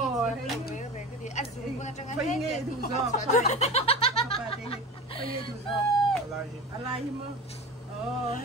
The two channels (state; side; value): normal; both; correlation 0.32